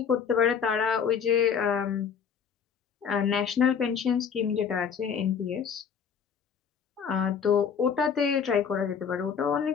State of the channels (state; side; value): quieter; right; 7.0 dB